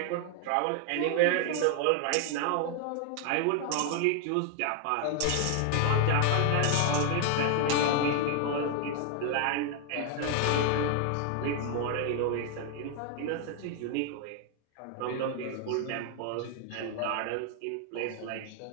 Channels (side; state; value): both; different; correlation 0.00